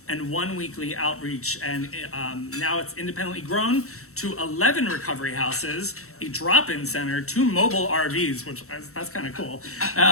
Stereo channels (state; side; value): late; right; 0.64 ms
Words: and 1 weekly outreach, and now it's independently grown to 11 recovery houses, a drop-in center, 2 mobile RVs, which that's kind of cool,